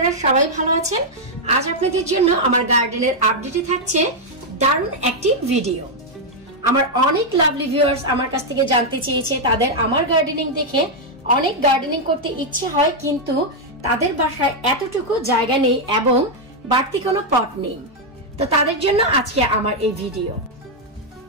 সবাই ভালো আছেন। আজ আপনাদের জন্য আমার গার্ডেনের আপডেটে থাকছে দারুণ একটি ভিডিও। আমার অনেক লাভলি ভিউয়ার্স আমার কাছ থেকে জানতে চেয়েছে, তাদের আমার গার্ডেনিং দেখে অনেক গার্ডেনিং করতে ইচ্ছে হয়, কিন্তু তাদের বাসায় এতটুকু জায়গা নেই এবং বাড়তি কোনো পট নেই। তো তাদের জন্য আজকে আমার এই ভিডিও।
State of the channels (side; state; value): both; normal; correlation -0.01